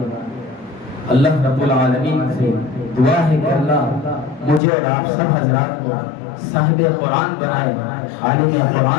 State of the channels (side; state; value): right; drops out; at 4.6 s